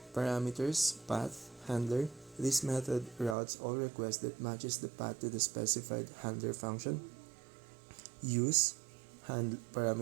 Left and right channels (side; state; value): left; drops out; at 3.4 s